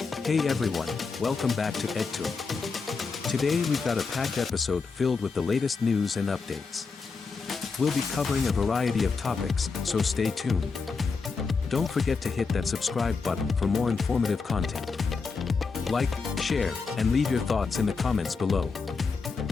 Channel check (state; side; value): quieter; right; 4.7 dB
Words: Hey everyone, welcome back to EdTour. Today we've got a packed episode filled with the latest news and updates. We'll be covering a variety of topics, so stay tuned. Don't forget to hit that subscribe button for more informative content. Like, share, and leave your thoughts in the comments below.